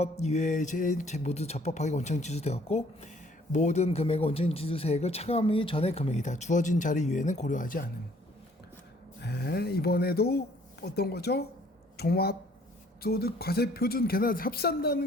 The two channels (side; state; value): both; normal; correlation 0.60